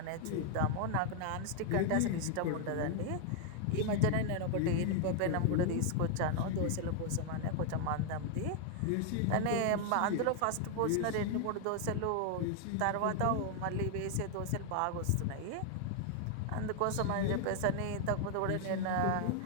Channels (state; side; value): different; both; correlation 0.00